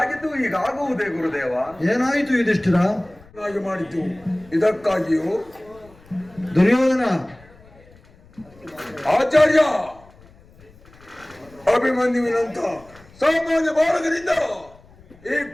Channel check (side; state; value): left; noise; rumble, 25 dB below the sound